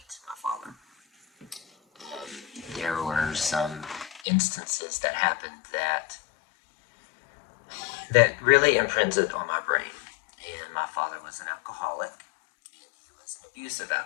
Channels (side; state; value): right; drops out; at 4.2 s